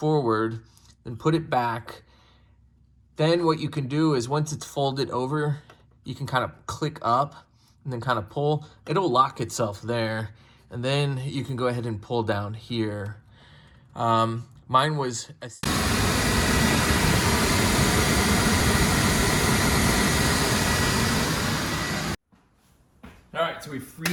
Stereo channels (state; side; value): identical; both; correlation 1.00